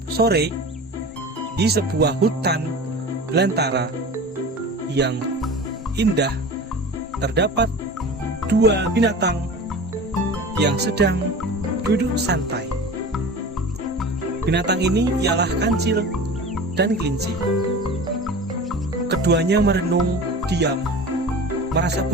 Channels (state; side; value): normal; both; correlation 0.35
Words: sore, di sebuah hutan belantara yang indah, terdapat dua binatang yang sedang duduk santai. Binatang ini ialah kancil dan kelinci. Keduanya merenung diam, merasa